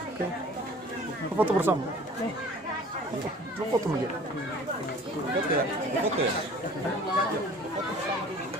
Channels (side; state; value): both; normal; correlation 0.47